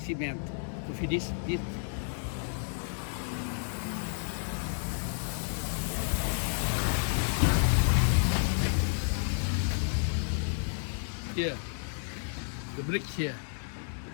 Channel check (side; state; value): right; silent; digital silence